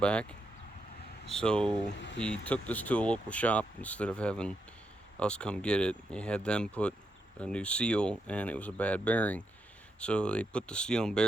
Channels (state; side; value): normal; both; correlation 0.82